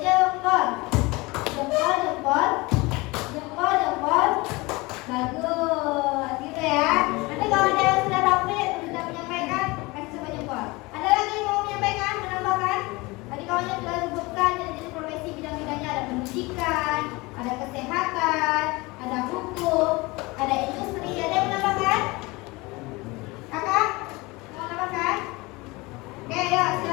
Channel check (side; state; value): right; quieter; 23.6 dB